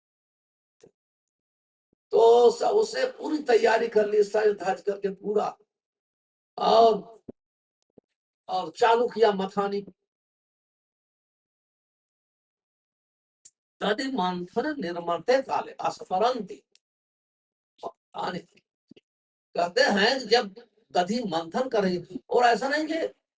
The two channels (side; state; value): both; identical; correlation 1.00